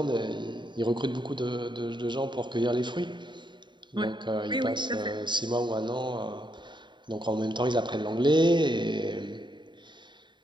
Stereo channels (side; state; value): left; late; 0.23 ms